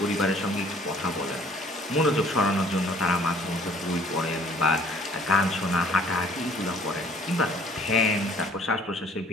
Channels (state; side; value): normal; both; correlation 0.56